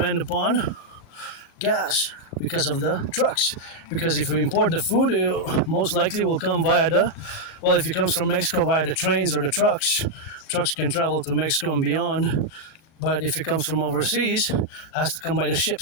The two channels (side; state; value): right; late; 38 ms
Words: upon gas because of the trucks. Because if we import the food, it most likely will come via if it comes from Mexico, via the trains or the trucks. Trucks can travel to Mexico and beyond. But if it comes from overseas, it has to come by the